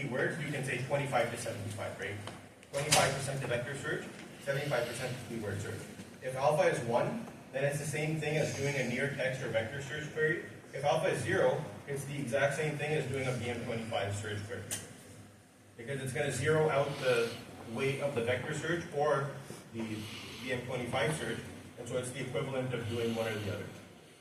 you can say 25 to 75, right? 25% to vector search, 75% to keyword search. If alpha is 1, then it's the same thing as doing a near text or vector search query. If alpha is 0, it's the exact same thing as doing a BM25 search query. Because it's going to zero out the weight of the vector search or the BM25 search, and so it's the equivalent of doing one or the other.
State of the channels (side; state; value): both; identical; correlation 1.00